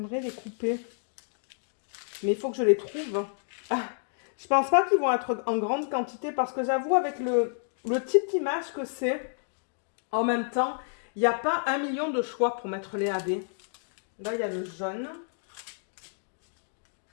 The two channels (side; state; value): right; silent; digital silence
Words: les couper. Mais il faut que je les trouve. Ah, je pense pas qu'ils vont être en grande quantité parce que j'avoue, avec le type d'image que c'est, en même temps, il n'y a pas 1 million de choix pour mettre les AB. Là, il y a le jaune.